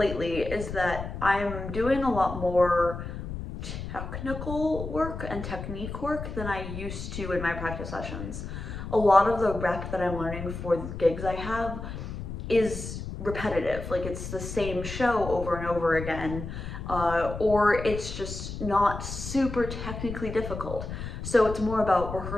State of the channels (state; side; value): noise; left; rumble, 8 dB below the sound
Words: is that I'm doing a lot more technical work and technique work than I used to in my practice sessions. A lot of the rep that I'm learning for the gigs I have is repetitive, like it's the same show over and over again, or it's just not super technically difficult. So it's more about